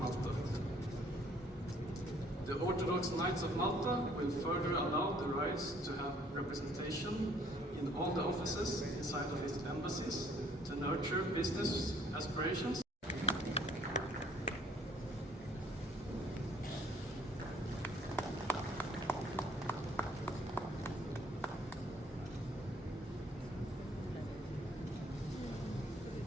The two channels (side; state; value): both; normal; correlation 0.61